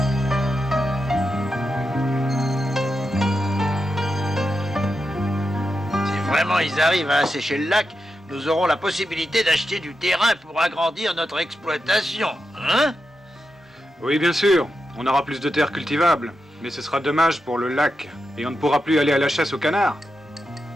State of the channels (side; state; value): both; normal; correlation 0.88